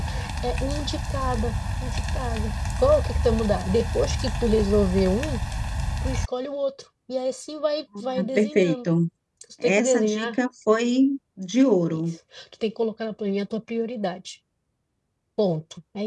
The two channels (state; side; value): identical; both; correlation 1.00